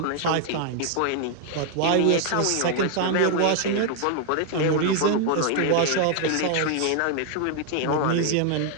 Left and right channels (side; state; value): both; different; correlation 0.00